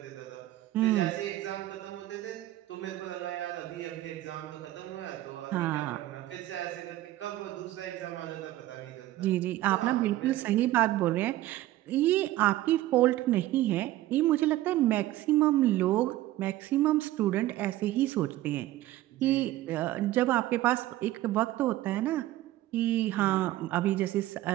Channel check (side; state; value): left; quieter; 15.4 dB